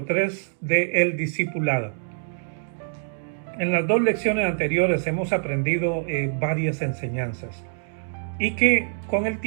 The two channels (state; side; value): silent; left; digital silence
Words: 3 de El Discipulado. En las dos lecciones anteriores hemos aprendido varias enseñanzas y que con el